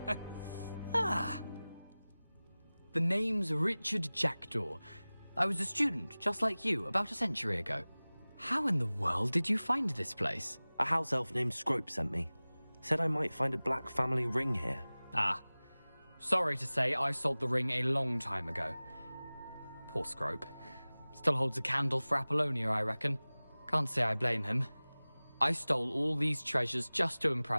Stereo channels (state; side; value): inverted; both; correlation -0.99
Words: Ah! The name's Richard Jackdaw. I was a student, just like you, about a century ago. How in the world did you find this place? A house elf named Scrope sent me. Said I might find a black family ring here. Ah. Sorry to say, I sold the ring a long time ago. Poor Scrope. Still holds a candle for Apollonia, I reckon. Can't say I blame him. I stole all these treasures just to